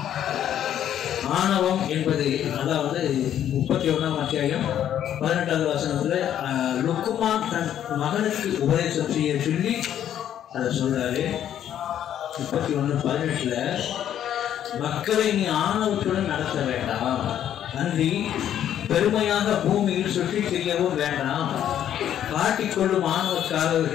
ஆணவம் என்பது, அதாவது 31ஆம் அத்தியாயம் 18வது வசனத்தில் லுக்குமான் தன் மகனுக்கு உபதேசம் செய்ய சொல்லி அதை சொல்றாரு. 31:18 மக்களை நீ ஆணவத்துடன் நடத்த வேண்டாம், அன்றி பெருமையாக பூமியில் சுற்றி திரியவும் வேண்டாம், காட்டிக்கொள்ளும்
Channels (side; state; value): right; quieter; 10.5 dB